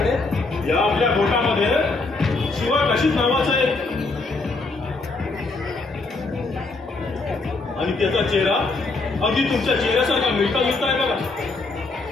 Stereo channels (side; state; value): right; quieter; 3.5 dB